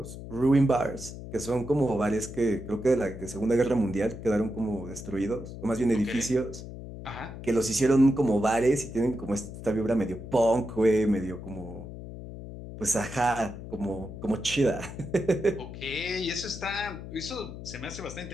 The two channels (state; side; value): noise; left; hum, 11 dB below the sound